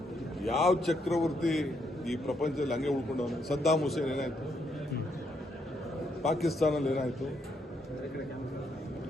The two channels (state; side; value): normal; both; correlation 0.76